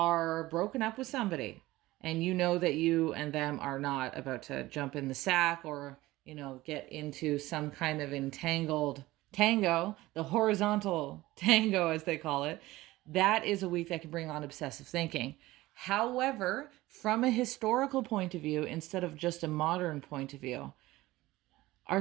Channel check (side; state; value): left; quieter; 18.1 dB